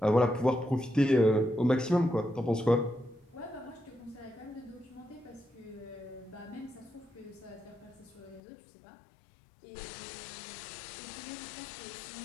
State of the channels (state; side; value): drops out; right; at 8.4 s